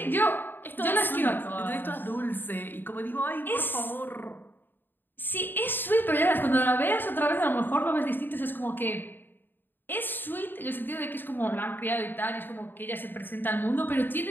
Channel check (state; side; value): late; right; 0.094 ms